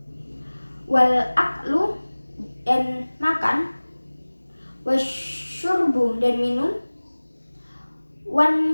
Wal aklu, dan makan. Wasyurbu, dan minum.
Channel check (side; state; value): both; inverted; correlation -1.00